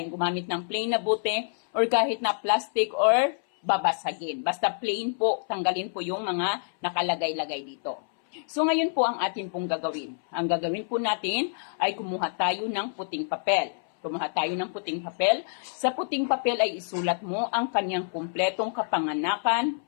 gumamit ng plain na bote or kahit na plastic or babasagin. Basta plain po, tanggalin po yung mga nakalagay-lagay dito. So, ngayon po ang atin pong gagawin. Ang gagawin po natin ay kumuha tayo ng puting papel. Kumuha tayo ng puting papel. Sa puting papel ay isulat mo ang kanyang kumpletong kapanganakan,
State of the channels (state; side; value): silent; right; 59 dB below the other